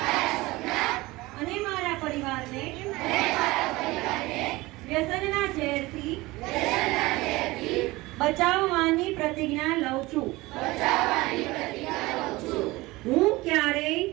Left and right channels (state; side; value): quieter; left; 20.7 dB